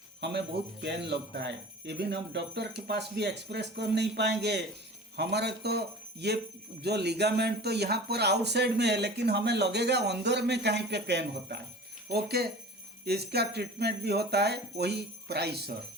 हमें बहुत पेन लगता है, इवन हम डॉक्टर के पास भी एक्सप्रेस कर नहीं पाएंगे। हमारा तो ये जो लिगामेंट तो यहाँ पर आउटसाइड में है, लेकिन हमें लगेगा अंदर में कहीं पे पेन होता है। ओके, इसका ट्रीटमेंट भी होता है वही PRICER.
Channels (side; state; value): both; normal; correlation 0.40